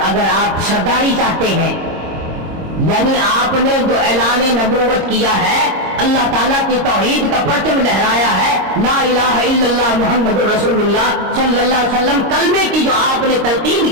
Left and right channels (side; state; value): left; late; 26 ms